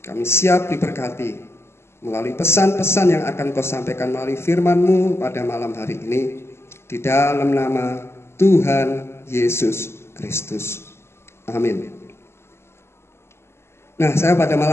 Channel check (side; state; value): right; late; 0.12 ms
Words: kami siap diberkati melalui pesan-pesan yang akan Kau sampaikan melalui firman-Mu pada malam hari ini. Di dalam nama Tuhan Yesus Kristus. Amin. Nah, saya pada